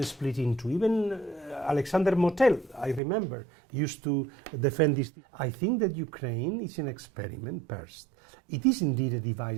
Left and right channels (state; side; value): drops out; left; at 3.0 s